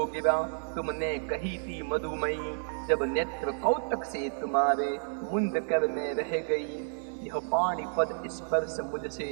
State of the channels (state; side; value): silent; left; 57 dB below the other